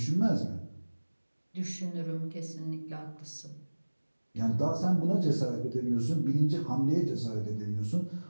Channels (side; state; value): both; inverted; correlation -1.00